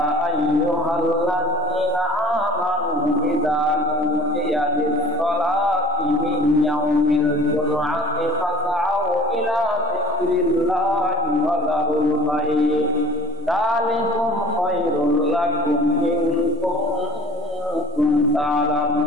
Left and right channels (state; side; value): normal; both; correlation 0.41